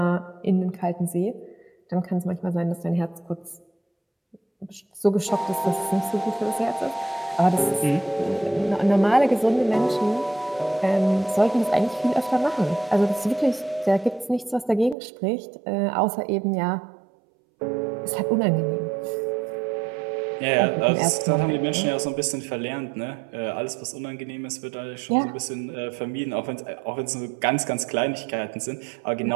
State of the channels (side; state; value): left; drops out; at 15.0 s